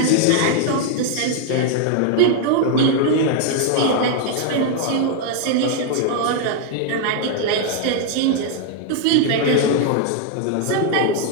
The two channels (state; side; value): different; both; correlation 0.00